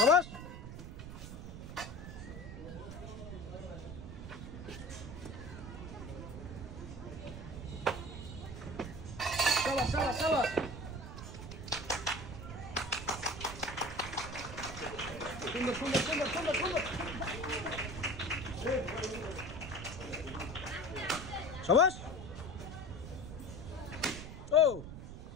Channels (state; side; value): noise; right; rumble, 9 dB below the sound